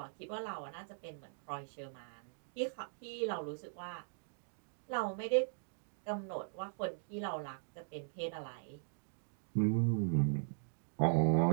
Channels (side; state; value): left; silent; digital silence